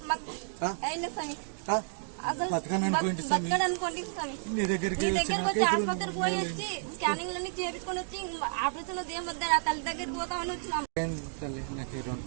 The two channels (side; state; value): left; silent; digital silence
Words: మాకు అయిన స్వామి. అసలు బతకడనుకోండి స్వామి. నీ దగ్గరికి వచ్చి ఆసుపత్రికి పోయి వచ్చి స్కానింగ్ లన్నీ చేపించుకొని వచ్చి ఆపరేషన్ ఏం వద్దని ఆ తల్లి దగ్గరికి పోతామని వచ్చినాము.